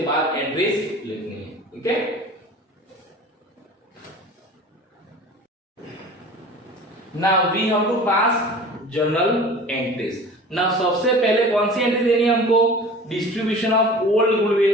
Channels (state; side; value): normal; both; correlation 0.40